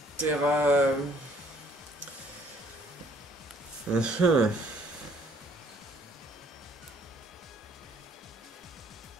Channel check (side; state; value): both; normal; correlation 0.61